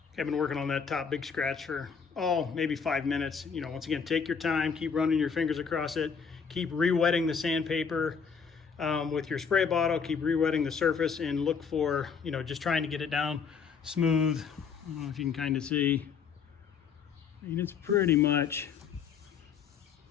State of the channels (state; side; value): quieter; right; 6.3 dB